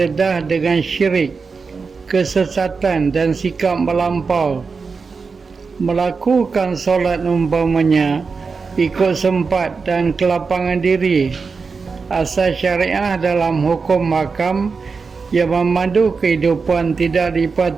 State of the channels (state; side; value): quieter; left; 4.9 dB